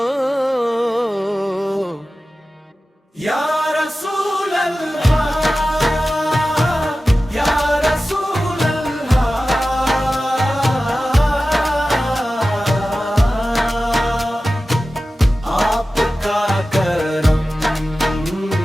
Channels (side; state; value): both; normal; correlation 0.95